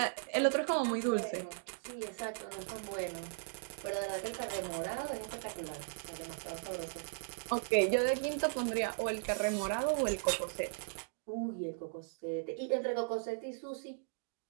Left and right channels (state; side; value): silent; left; digital silence